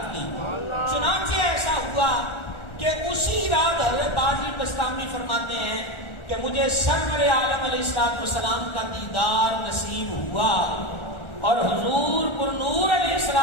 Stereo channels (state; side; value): late; right; 1.4 ms